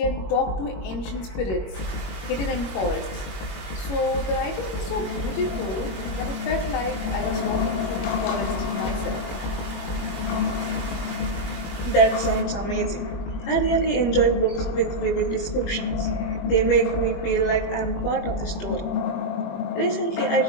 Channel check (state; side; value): late; right; 21 ms